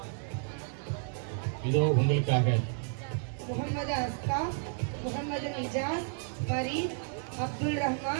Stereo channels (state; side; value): silent; left; 57 dB below the other